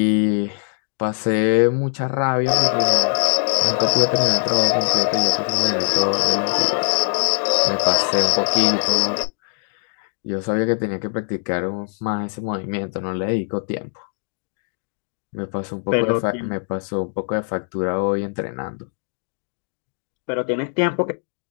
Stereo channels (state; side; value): silent; right; digital silence